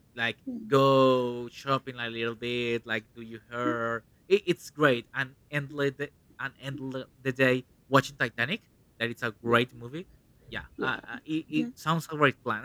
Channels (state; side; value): identical; both; correlation 1.00